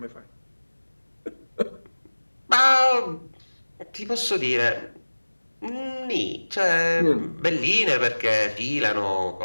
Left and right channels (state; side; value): inverted; both; correlation -1.00